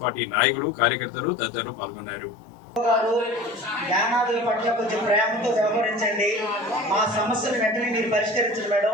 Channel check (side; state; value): both; normal; correlation 0.39